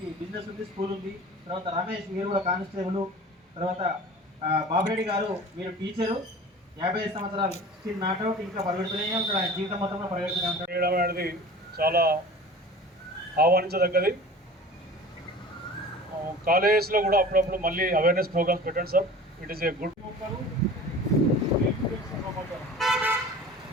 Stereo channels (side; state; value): both; normal; correlation 0.40